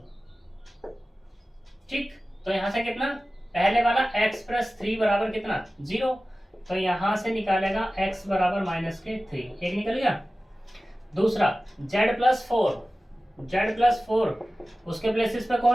ठीक, तो यहां से कितना, पहले वाला x + 3 बराबर कितना 0, तो यहां से निकालेगा x बराबर -3, एक निकल गया। दूसरा z + 4 उसके प्लेसेस पे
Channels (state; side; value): normal; both; correlation 0.96